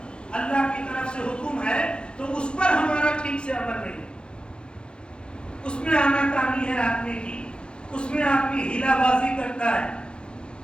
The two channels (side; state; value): right; late; 0.053 ms